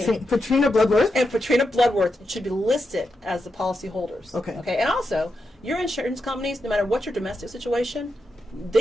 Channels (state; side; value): normal; both; correlation 0.86